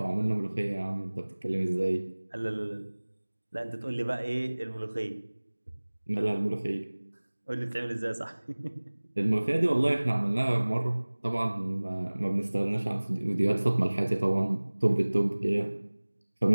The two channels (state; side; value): inverted; both; correlation -1.00